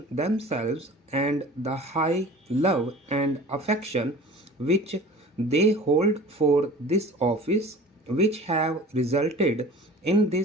themselves and the high love and affection which they hold for this office which have resulted in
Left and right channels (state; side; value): normal; both; correlation 0.42